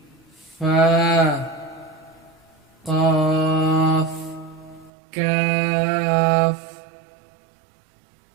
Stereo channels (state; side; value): drops out; left; at 4.9 s